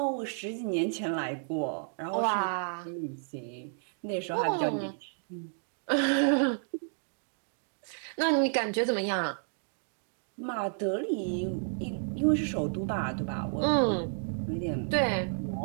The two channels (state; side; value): silent; left; digital silence